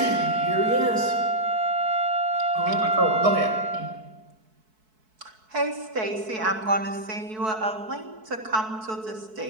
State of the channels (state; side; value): late; left; 4.6 ms